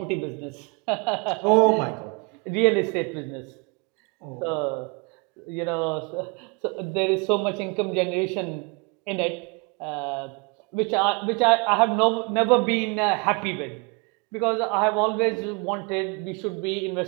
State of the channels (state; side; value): quieter; left; 30.8 dB